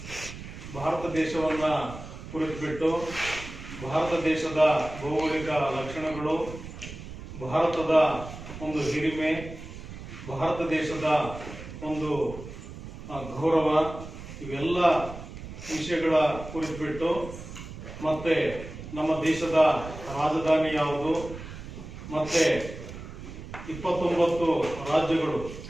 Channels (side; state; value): right; noise; rumble, 12 dB below the sound